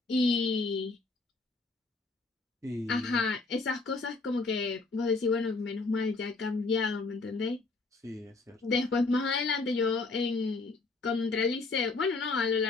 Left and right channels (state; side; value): quieter; right; 3.7 dB